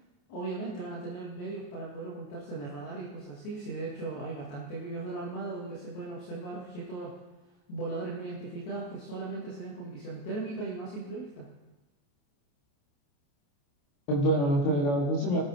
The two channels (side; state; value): right; late; 28 ms